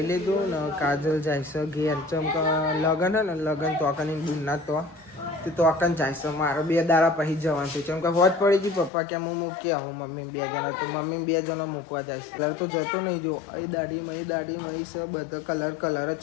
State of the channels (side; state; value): right; drops out; at 8.9 s